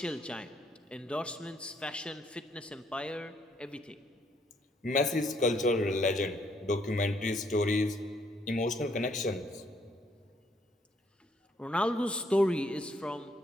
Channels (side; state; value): both; normal; correlation 0.69